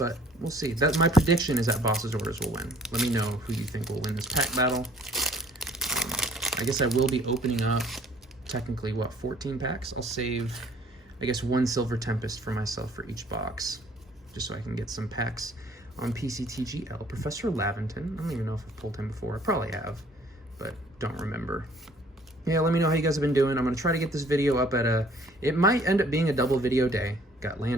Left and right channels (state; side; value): normal; both; correlation 0.57